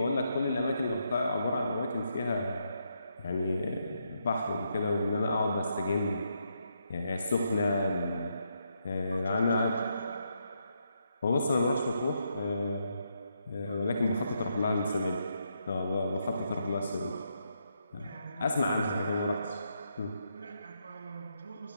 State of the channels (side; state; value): both; inverted; correlation -0.79